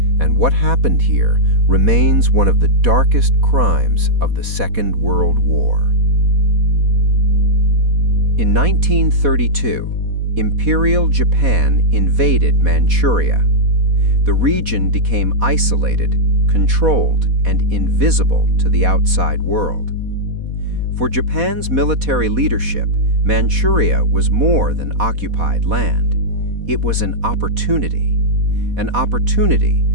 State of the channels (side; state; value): left; late; 4.1 ms